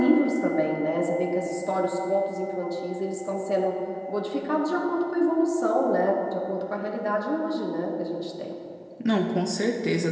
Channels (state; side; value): identical; both; correlation 1.00